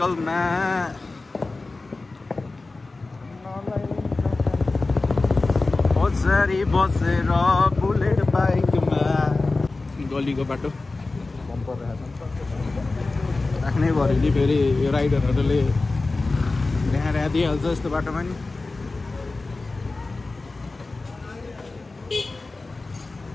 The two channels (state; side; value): quieter; right; 3.4 dB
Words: पछाडि बसेर बुलेट बाइकमा गलीको बाटो बम्पर राख्नै पऱ्यो नि फेरि यो राइडरहरूले देखाएर दिइहाल्छ यस्तो बाटोमा नि